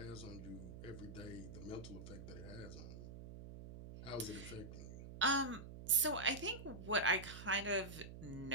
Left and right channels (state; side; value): noise; right; hum, 11 dB below the sound